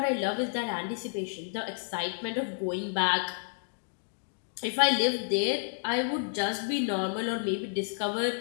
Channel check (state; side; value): silent; right; digital silence